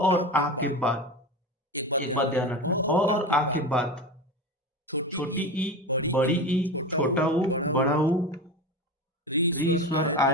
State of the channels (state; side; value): normal; both; correlation 0.25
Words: आ के बाद, एक बात ध्यान रखना, अ और आ के बाद छोटी ई, बड़ी ई, छोटा ऊ, बड़ा ऊ, री स्वर